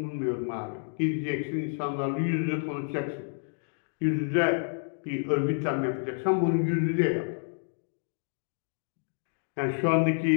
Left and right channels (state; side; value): silent; right; digital silence